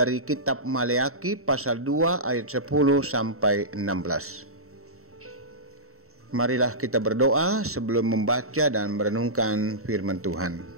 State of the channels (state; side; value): late; left; 0.63 ms